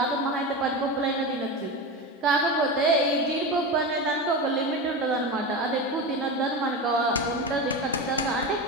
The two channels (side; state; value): both; normal; correlation 0.22